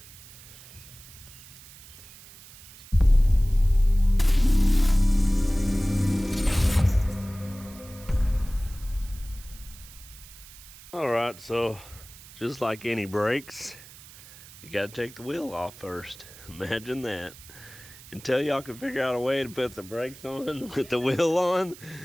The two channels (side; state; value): right; noise; hiss, 19 dB below the sound